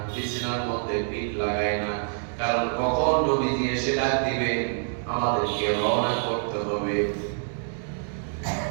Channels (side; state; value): left; silent; 61 dB below the other